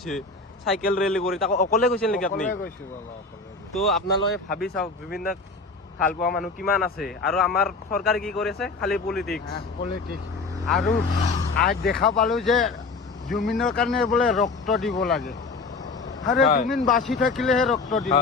চাইকেল ৰেলী কৰি। তাকো অকলে গৈছিল নেকি আপুনি? গৈছো বাবা, অকলে। তো আপোনালোকে ভাবি চাওক জুবিনদাক ভাল পোৱা মানুহ কিমান আছে, আৰু আমাৰ চৰকাৰে কি কৰিছে? খালি পলিটিক্স। আৰু আজ দেখা পালো যে জুবিনৰ কাৰণে বোলে ৰক্ত দিব লাগে। আৰে জুবিন বাচি থাকিলেহে ৰক্ত দিব।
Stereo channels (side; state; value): right; quieter; 3.9 dB